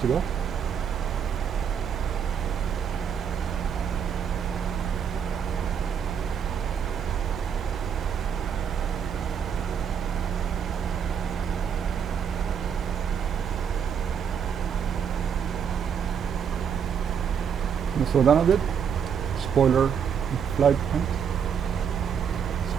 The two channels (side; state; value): left; quieter; 7.5 dB